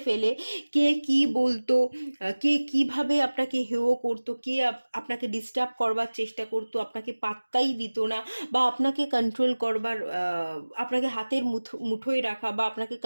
ফেলে কে কি বলতো, কে কিভাবে আপনাকে হেয় করতো, কে আপনাকে ডিস্টার্ব করবার চেষ্টা করতো, আপনাকে পাত্তাই দিত না, বা আপনাকে কন্ট্রোল করবার আপনাকে হাতের মুঠোয় রাখা বা আপনাকে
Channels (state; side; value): inverted; both; correlation -1.00